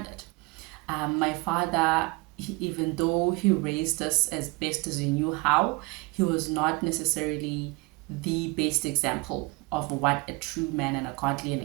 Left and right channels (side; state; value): left; quieter; 26.5 dB